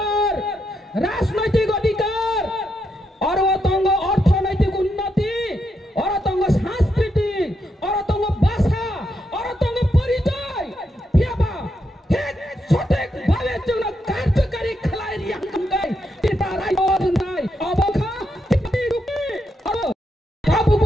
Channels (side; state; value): both; normal; correlation 0.81